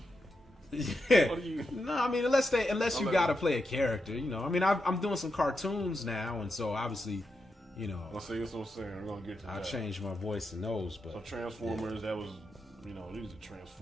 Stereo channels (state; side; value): normal; both; correlation 0.86